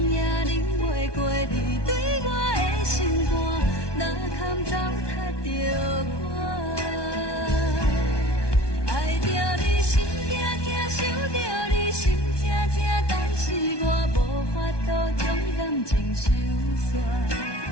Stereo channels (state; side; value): late; right; 1.2 ms